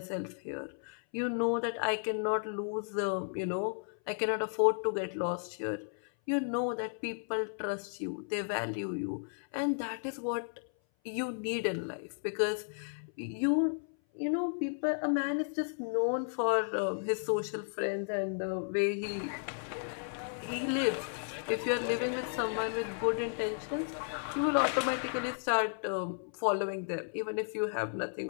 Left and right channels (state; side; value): silent; right; 55 dB below the other